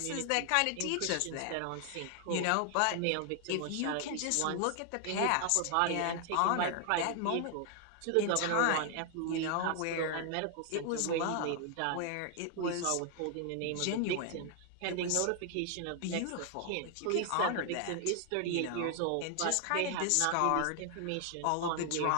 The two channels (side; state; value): both; different; correlation 0.00